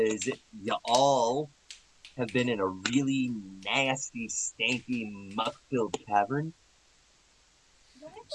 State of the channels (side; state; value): both; identical; correlation 1.00